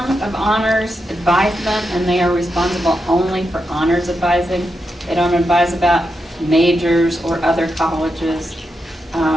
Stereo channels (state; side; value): normal; both; correlation 0.86